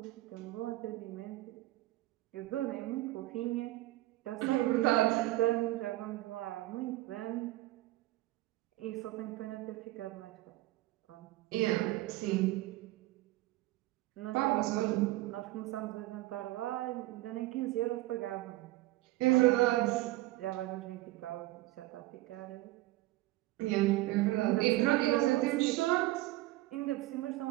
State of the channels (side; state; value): left; quieter; 18.1 dB